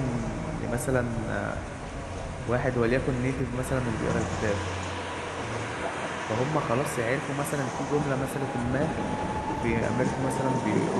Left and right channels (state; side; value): identical; both; correlation 1.00